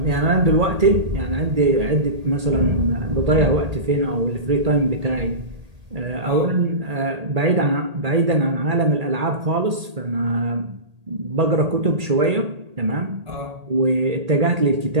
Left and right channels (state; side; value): late; left; 1.8 ms